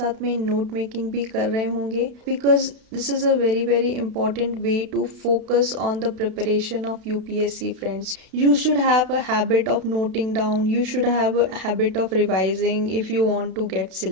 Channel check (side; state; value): left; late; 32 ms